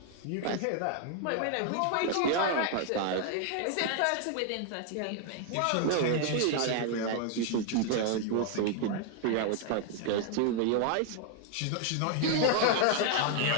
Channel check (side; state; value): both; different; correlation 0.00